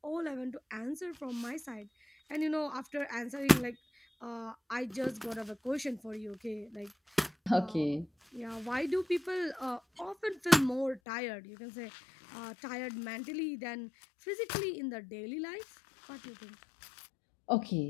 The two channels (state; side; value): drops out; right; at 11.0 s